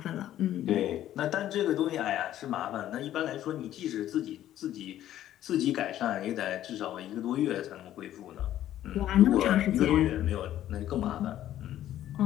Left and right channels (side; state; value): right; quieter; 12.4 dB